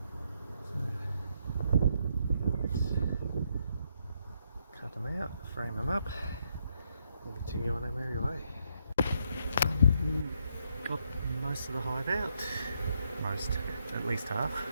Cut them out, frame them up, and continue on our merry way. Got most of the hive out, at least half.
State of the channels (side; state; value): both; inverted; correlation -0.75